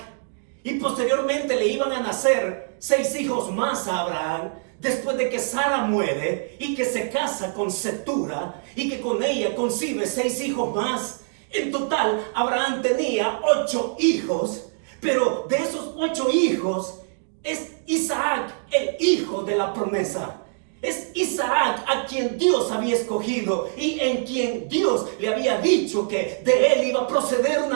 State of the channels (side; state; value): left; silent; digital silence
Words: y posteriormente le iban a nacer 6 hijos más a Abraham, después de que Sara muere y que se casa con Cetura y que con ella concibe 6 hijos más. En total, Abraham tenía 8 hijos, pero de esos 8 hijos es Isaac el hijo de la promesa. Es Isaac a quien Dios había escogido y en quien Dios le había dicho que de él iba a proceder